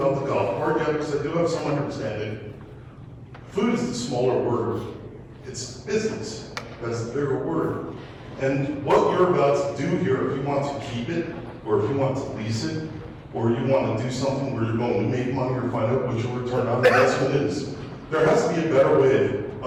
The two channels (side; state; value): both; identical; correlation 1.00